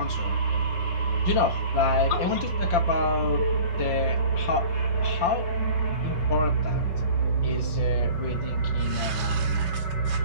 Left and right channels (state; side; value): late; right; 5.8 ms